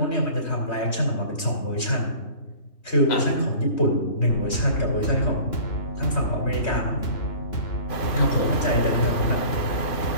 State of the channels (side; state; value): right; late; 3.2 ms